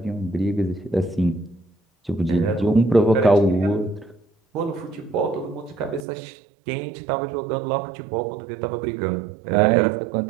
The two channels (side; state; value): left; drops out; at 6.1 s